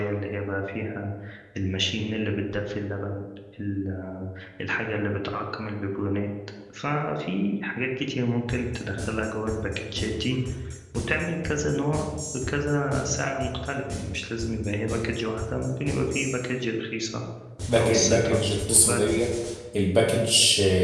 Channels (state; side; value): identical; both; correlation 1.00